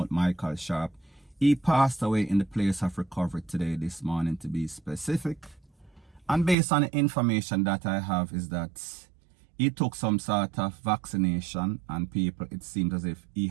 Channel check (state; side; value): drops out; left; at 6.6 s